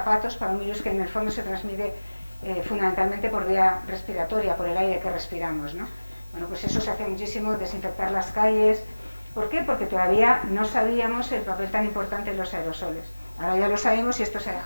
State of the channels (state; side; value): inverted; both; correlation -1.00